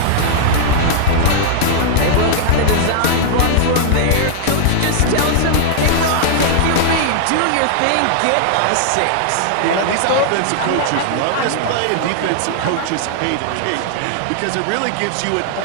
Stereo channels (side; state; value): both; different; correlation -0.01